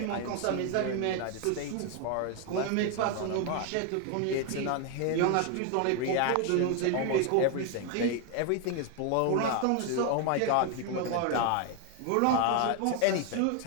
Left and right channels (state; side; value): different; both; correlation 0.01